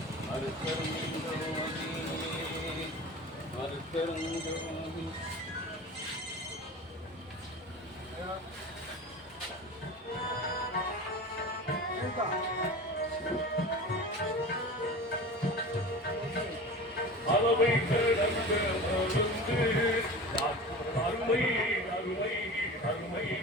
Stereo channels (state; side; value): normal; both; correlation 0.34